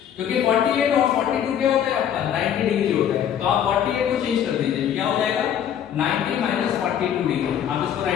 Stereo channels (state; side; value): quieter; right; 9.4 dB